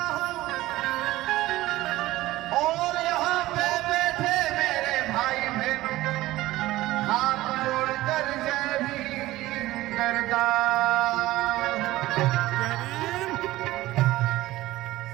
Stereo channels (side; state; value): left; quieter; 17.1 dB